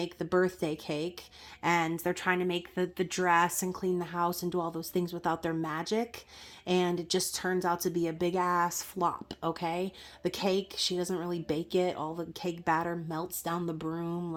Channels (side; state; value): both; identical; correlation 1.00